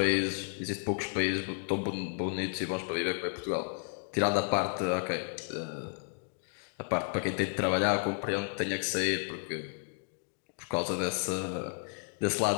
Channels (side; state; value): right; silent; 56 dB below the other